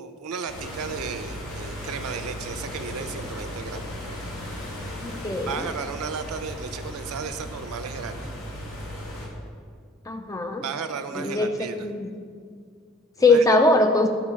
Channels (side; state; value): both; normal; correlation 0.49